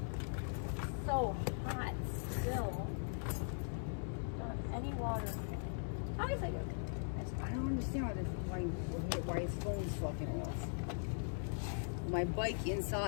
So hot still. Don't have any water. How is it? I don't understand why his phone's fucking off. My bike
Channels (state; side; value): silent; right; 51 dB below the other